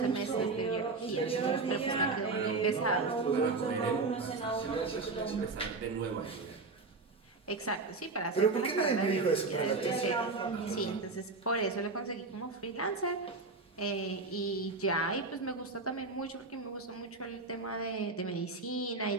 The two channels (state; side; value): quieter; left; 3.8 dB